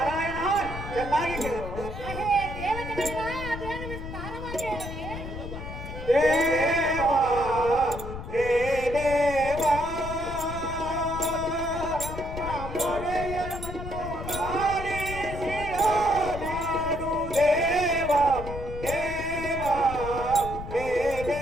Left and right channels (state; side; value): noise; left; rumble, 9 dB below the sound